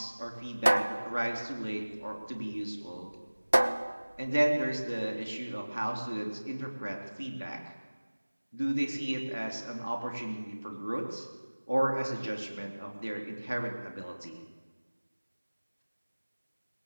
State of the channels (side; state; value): both; inverted; correlation -1.00